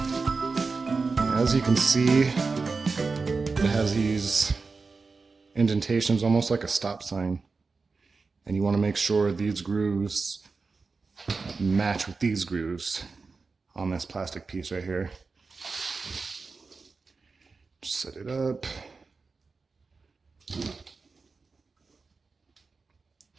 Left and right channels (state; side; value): quieter; left; 4.3 dB